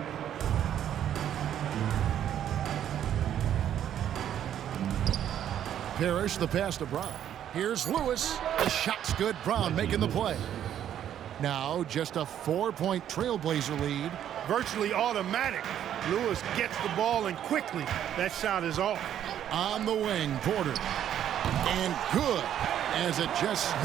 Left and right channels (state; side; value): quieter; left; 10.4 dB